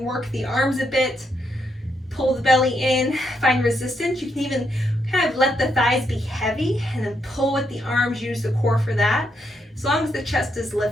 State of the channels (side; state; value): both; normal; correlation 0.78